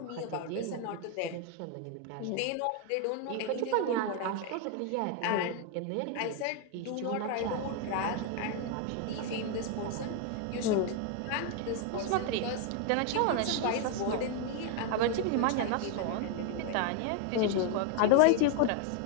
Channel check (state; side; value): different; both; correlation 0.01